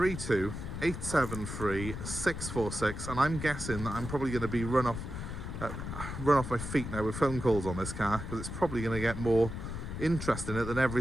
873 646, and I'm guessing that I'm probably going to be run off my feet now with phone calls on this car, because it's probably going to get more interest in it than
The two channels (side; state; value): left; noise; rumble, 7 dB below the sound